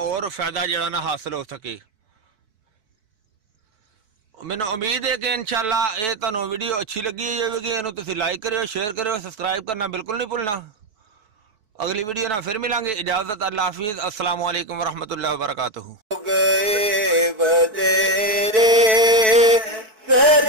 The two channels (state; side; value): late; left; 4.6 ms